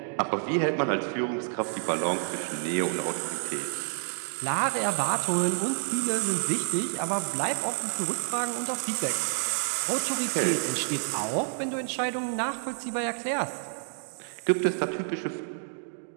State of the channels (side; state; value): left; silent; digital silence